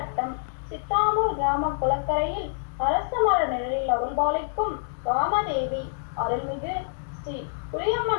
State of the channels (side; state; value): right; silent; digital silence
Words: சித்தாமூர் கிராம குளக்கரையில் அரச மர நிழலில் அருள்பாலிக்கும் ராமதேவி அருள்மிகு ஸ்ரீ